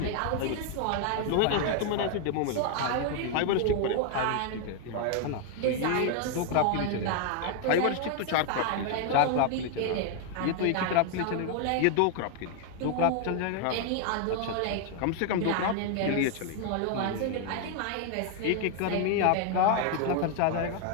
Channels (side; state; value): both; different; correlation 0.00